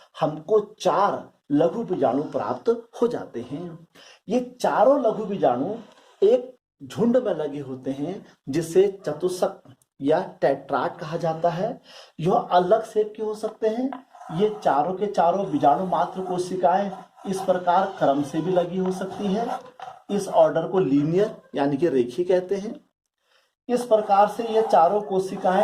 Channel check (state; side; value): identical; both; correlation 1.00